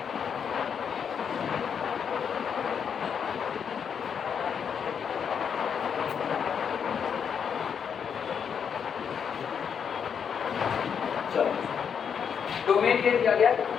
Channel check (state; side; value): quieter; right; 7.3 dB